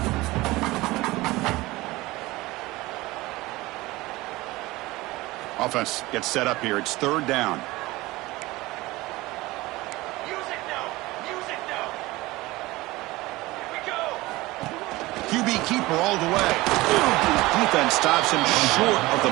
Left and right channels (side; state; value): left; quieter; 20.0 dB